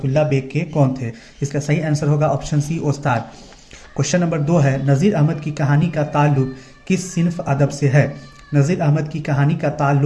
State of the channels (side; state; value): both; identical; correlation 1.00